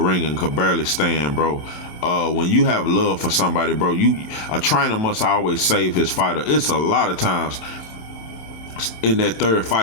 and could barely stand, bro. When you have love for somebody, bro, a trainer must always save his fighter. It's a lot of times in that third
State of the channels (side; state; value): right; late; 28 ms